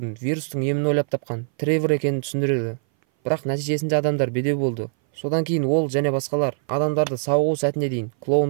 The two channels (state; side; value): silent; left; 59 dB below the other